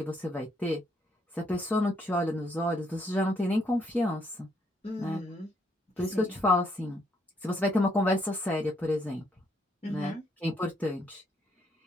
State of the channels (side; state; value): both; normal; correlation 0.72